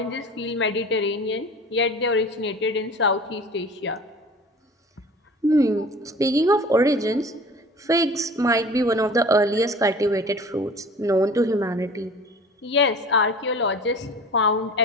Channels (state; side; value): normal; both; correlation 0.42